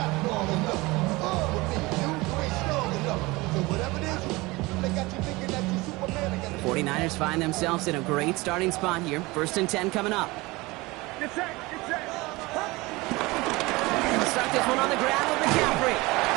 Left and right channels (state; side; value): quieter; left; 22.3 dB